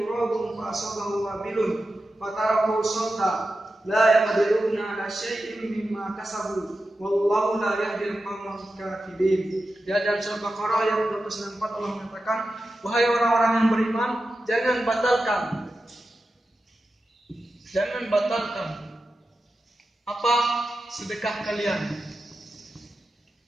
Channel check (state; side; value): normal; both; correlation 0.91